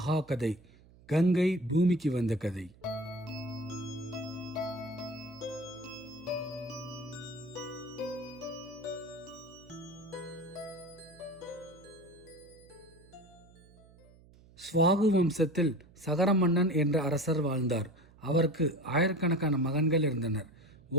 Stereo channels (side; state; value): right; noise; hum, 25 dB below the sound